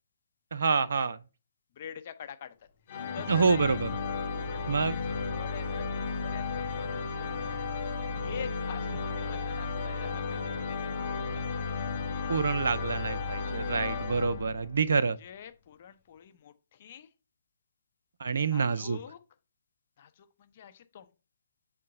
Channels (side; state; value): both; inverted; correlation -0.74